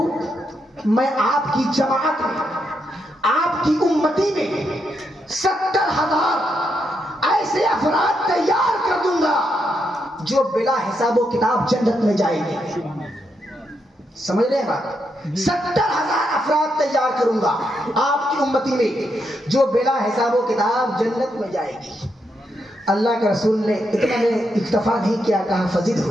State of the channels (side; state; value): both; normal; correlation 0.81